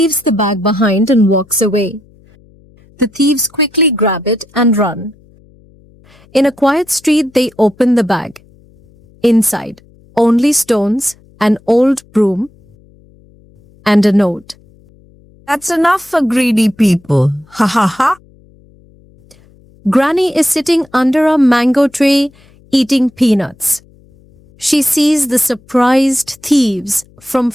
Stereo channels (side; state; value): left; noise; hum, 29 dB below the sound